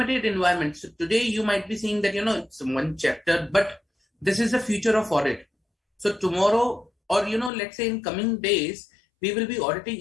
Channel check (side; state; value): right; drops out; at 7.5 s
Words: environment. So today you might be seeing that it's one chapter, but this is the future of audit. So tomorrow, or let's say in coming days, we will be auditing